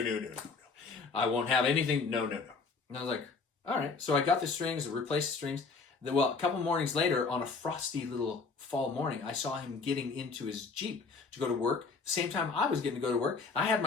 I won't have anything. No. And I was like, all right. So I got the strings, replaced the strings. Well, a couple mornings later, on a frosty little fall morning, I saw him getting into his Jeep to go to work. Same time I was getting to go to work. I had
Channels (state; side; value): quieter; right; 4.6 dB